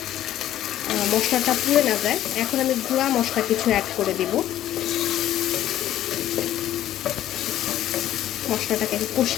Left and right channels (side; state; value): right; quieter; 12.5 dB